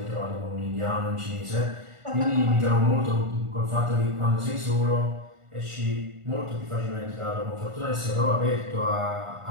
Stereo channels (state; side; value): late; left; 1.4 ms